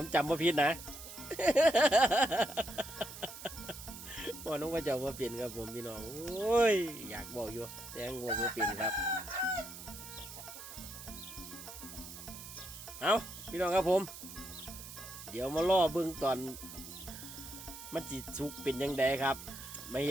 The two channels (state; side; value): noise; right; hiss, 12 dB below the sound